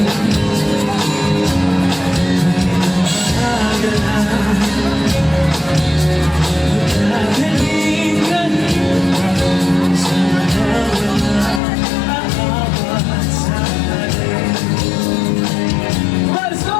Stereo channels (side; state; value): right; drops out; at 11.6 s